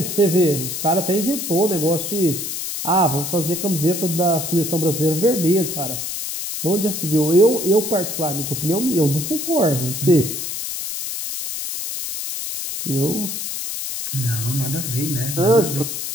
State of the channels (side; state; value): left; noise; hiss, 5 dB below the sound